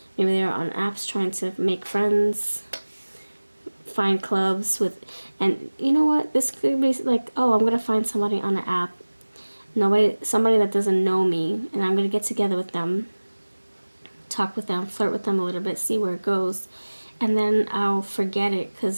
Maybe they're on apps trying to make friends, find clubs with, and you know what? This could be like, oh, I'm gonna find somebody on an app. Somebody that doesn't know me, and I'm gonna get together with them, talk with them, flirt with them a little bit, see where it goes. And then I'll forget it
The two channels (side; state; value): both; inverted; correlation -1.00